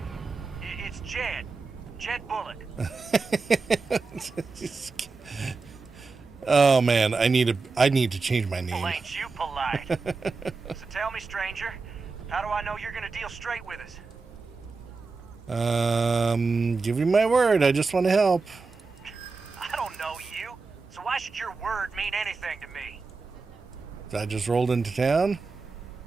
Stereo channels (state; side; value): quieter; left; 4.2 dB